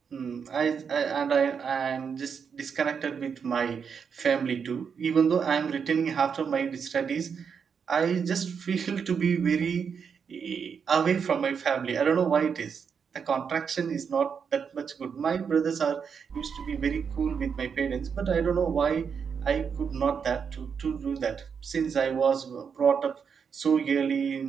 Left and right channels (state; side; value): quieter; left; 6.5 dB